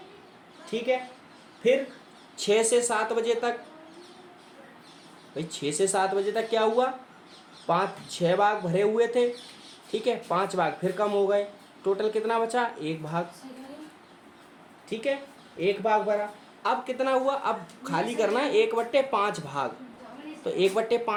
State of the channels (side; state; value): both; identical; correlation 1.00